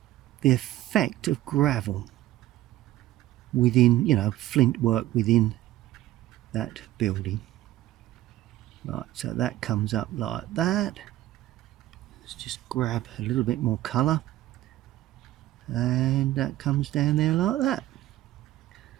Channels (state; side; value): quieter; left; 14.9 dB